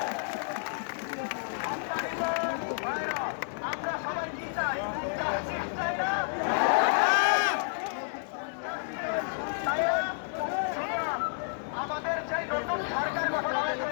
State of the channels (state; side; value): silent; right; digital silence